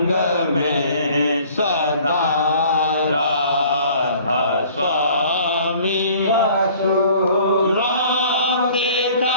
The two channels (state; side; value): inverted; both; correlation -0.53